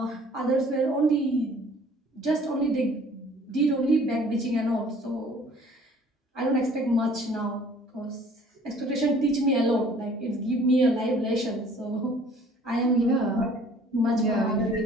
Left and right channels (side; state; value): both; normal; correlation 0.54